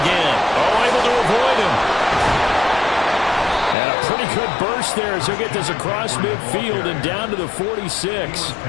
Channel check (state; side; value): drops out; right; at 3.8 s